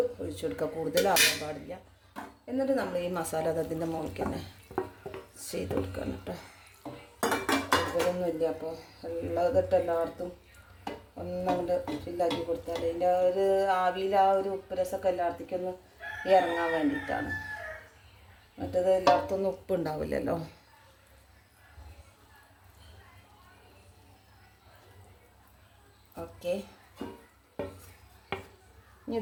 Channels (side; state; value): both; identical; correlation 1.00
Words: ഒഴിച്ചു കൊടുക്കുക. കൂടുതലാവാൻ പാടില്ല. എന്നിട്ട് നമ്മൾ ഈ മസാല അതിൻ്റെ മുകളിൽ തന്നെ ചെയ്ത് കൊടുക്കണം കേട്ടോ. കൂടുതലൊന്നുമില്ല. അപ്പോൾ ഉള്ളതിട്ട് എല്ലായിടത്തും ഒന്നങ്ങോട്ട് ഫില്ലാക്കി കൊടുത്താൽ അതിൻ്റെ ഒരു ആവിയിൽ ആ ഒരു ഉപ്പ് രസമൊക്കെ എല്ലായിടത്തേക്കും ഒന്ന് ഇറങ്ങാൻ വേണ്ടിയിട്ടാണ്. മറ്റേത് എല്ലായിടത്തൊന്നും ഉപ്പുണ്ടാവില്ലല്ലോ. ഓക്കെ, ഇനി